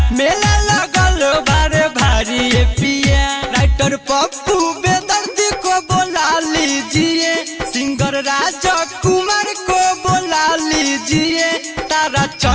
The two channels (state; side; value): identical; both; correlation 1.00